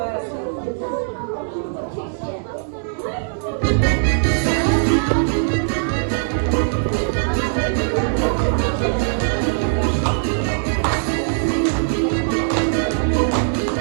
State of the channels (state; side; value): silent; left; 65 dB below the other